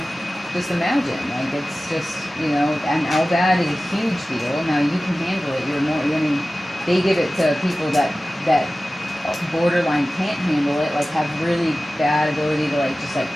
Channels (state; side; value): normal; both; correlation 0.96